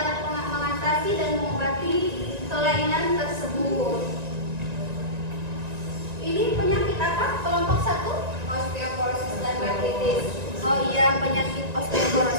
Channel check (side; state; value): left; late; 1.9 ms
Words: mengatasi dan mengobati kelainan tersebut. Ini penyakit apa? Kelompok 1? Osteoporosis dan artritis. Oh iya, penyakit